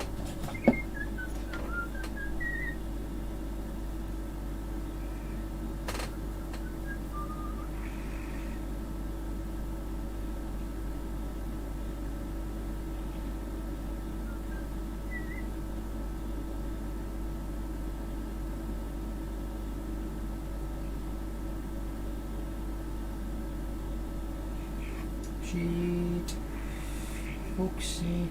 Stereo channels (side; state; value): both; identical; correlation 1.00